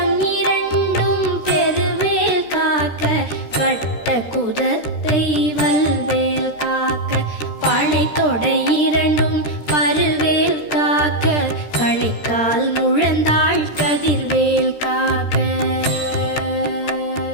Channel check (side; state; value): right; late; 13 ms